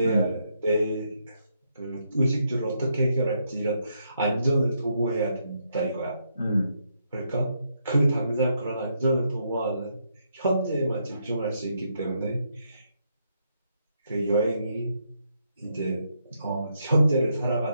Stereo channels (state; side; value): inverted; both; correlation -0.77